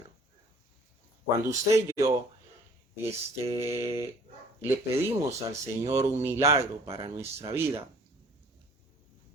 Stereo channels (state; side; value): normal; both; correlation 0.53